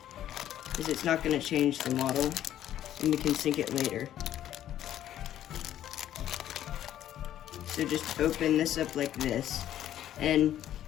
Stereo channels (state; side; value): quieter; right; 11.7 dB